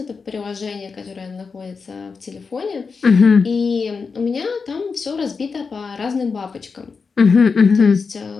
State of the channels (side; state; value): right; quieter; 5.0 dB